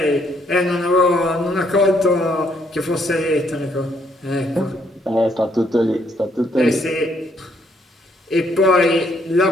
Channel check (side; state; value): both; normal; correlation 0.70